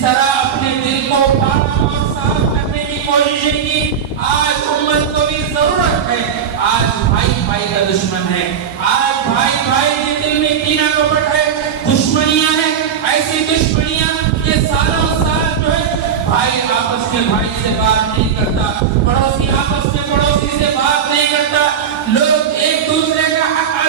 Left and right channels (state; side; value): quieter; left; 7.8 dB